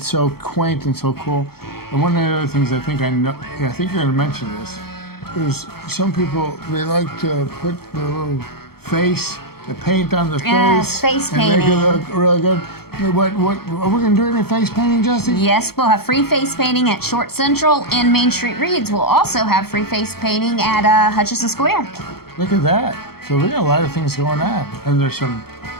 so quaint and so cool. And one of the other things I think you're gonna mention this, is some people, they like to put the little face, the paint on the face painting. And make it look really good. What are we gonna do any face painting, Jesse? Yes, we'll have free face painting at Short Central, and Main Street Reads will also have free face painting at Hutchinson Square. Look at that. So we got a lot of things going on. And there's some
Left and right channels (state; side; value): late; right; 0.95 ms